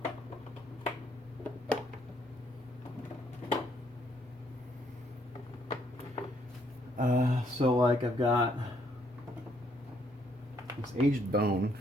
So like I've got this aged bone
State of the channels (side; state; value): both; normal; correlation 0.69